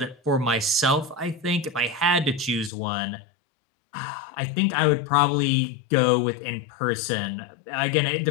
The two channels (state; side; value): drops out; right; at 2.7 s